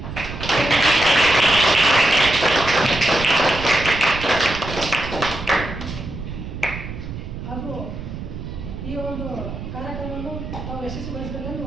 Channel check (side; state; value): right; noise; rumble, 9 dB below the sound